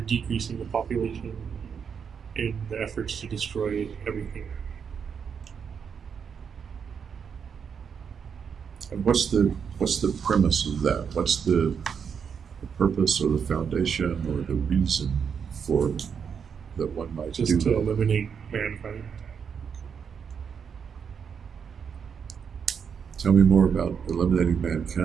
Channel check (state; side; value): quieter; left; 6.8 dB